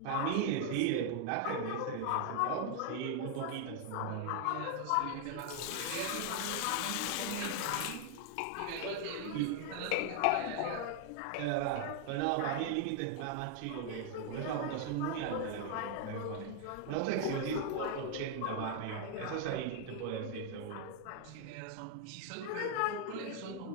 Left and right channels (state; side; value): different; both; correlation 0.00